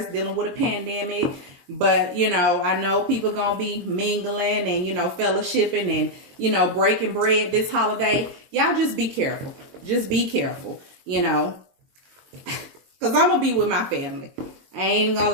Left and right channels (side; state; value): left; late; 22 ms